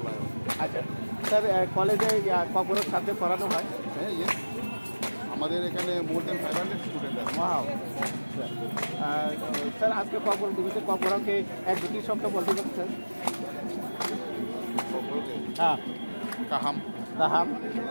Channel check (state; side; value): inverted; both; correlation -1.00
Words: আচ্ছা স্যার, কলেজে কখনো সাথে পড়ানো হয়? হ্যাঁ, ইয়েস, আমাদের এখানে মোর দেন 500 স্টুডেন্ট আছে। ওয়াও স্যার, আজকে কখন দিবসে কখনকে এক দুটি শব্দ বলতে পারছেন? হ্যাঁ, কাহাম কাহাম